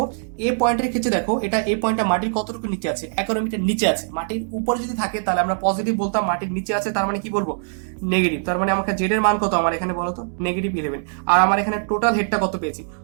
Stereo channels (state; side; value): silent; left; 64 dB below the other